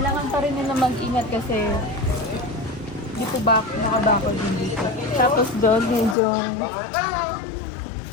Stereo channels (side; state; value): right; drops out; at 6.2 s